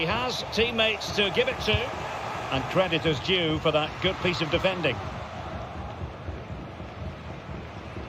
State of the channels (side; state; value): both; identical; correlation 1.00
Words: has teammates to give it to. And credit is due for that good piece of defending.